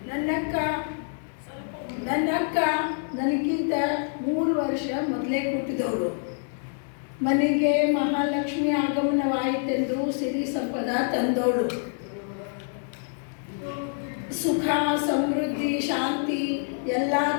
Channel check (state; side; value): silent; right; 61 dB below the other